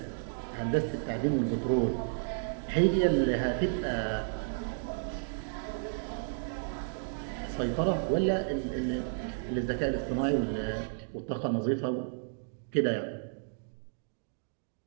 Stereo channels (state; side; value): silent; left; digital silence